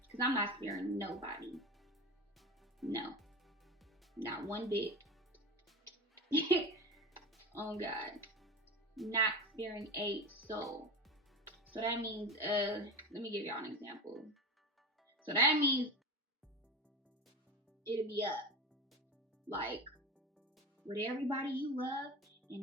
Because I'm not sparing nobody. No. Not one bit. Oh God. Not sparing a soul. So that means, let me give y'all an example. So that means it'll be up. Like, with everybody you love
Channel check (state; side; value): normal; both; correlation 0.25